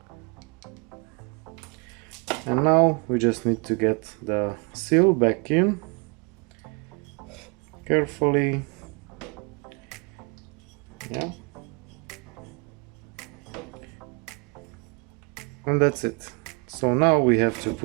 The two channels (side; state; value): left; quieter; 32.0 dB